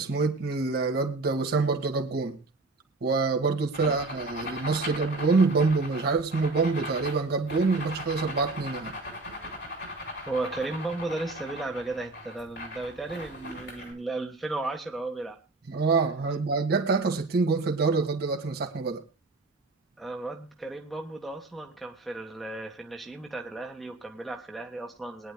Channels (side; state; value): left; quieter; 3.4 dB